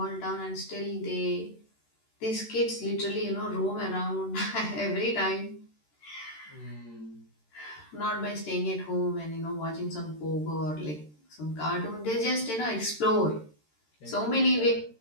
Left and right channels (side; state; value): right; late; 13 ms